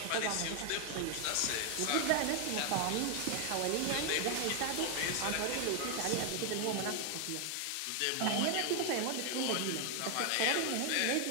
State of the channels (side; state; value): both; different; correlation 0.01